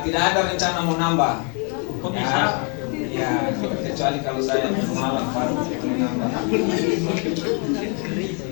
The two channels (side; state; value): right; quieter; 37.4 dB